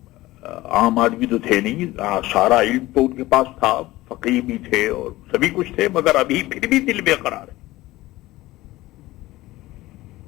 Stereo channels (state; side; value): quieter; right; 17.9 dB